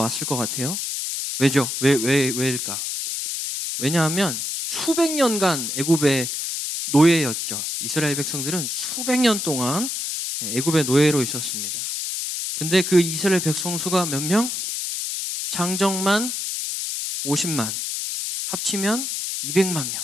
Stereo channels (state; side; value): noise; left; hiss, 3 dB below the sound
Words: 것 같아요. 왜죠? 왜일까? 왜냐하면 수백 년간 애굽의 노예였죠. 이스라엘 백성들은 수백 년 동안 애굽의 노예로 있었습니다. 근데 그 이스라엘 백성 수가 몇 명? 장정만 50만, 합치면 200만